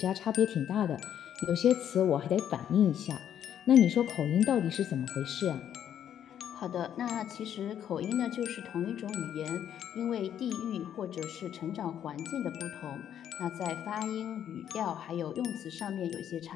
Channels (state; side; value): quieter; right; 9.9 dB